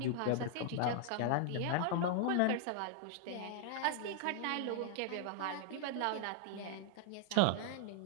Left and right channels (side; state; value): both; different; correlation 0.00